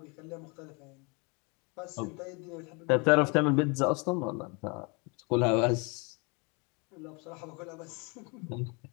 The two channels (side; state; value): right; quieter; 31.2 dB